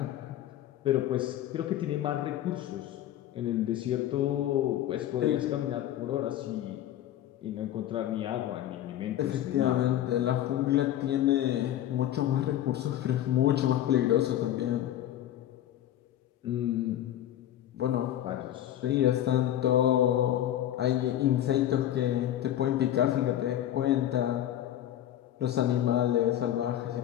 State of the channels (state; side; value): quieter; right; 12.2 dB